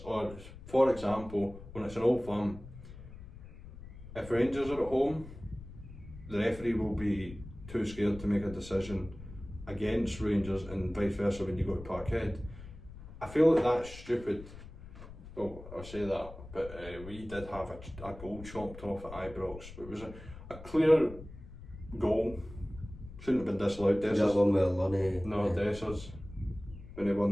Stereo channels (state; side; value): noise; left; rumble, 15 dB below the sound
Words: Or for example, when it's an Old Firm, if Rangers are at home, the referee will be too scared to make a decision against Rangers, and vice versa when you go to Parkhead. I feel like that's stupid. Well, I'll say that, but we did have a goal chopped off at Ibrox. It was a clear goal. Shouldn't have been disallowed. That one with Lunny. No, Dessers, when he